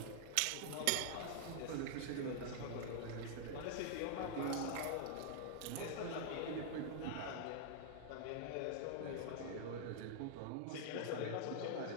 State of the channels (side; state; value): both; different; correlation 0.00